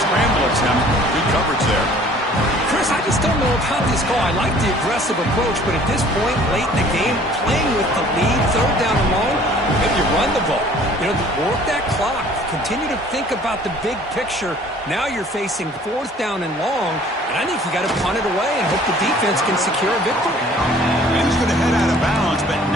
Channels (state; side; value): normal; both; correlation 0.53